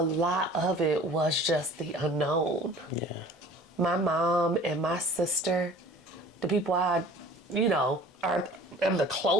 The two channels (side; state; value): both; normal; correlation 0.46